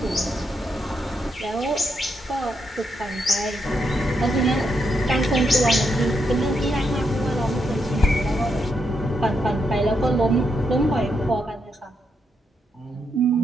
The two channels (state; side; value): normal; both; correlation 0.81